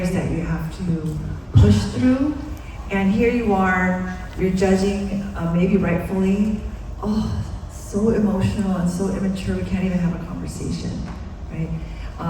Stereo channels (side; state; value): both; identical; correlation 1.00